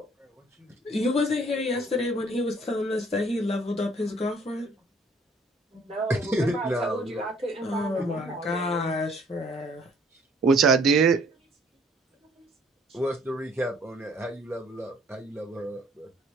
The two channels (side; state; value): both; normal; correlation 0.59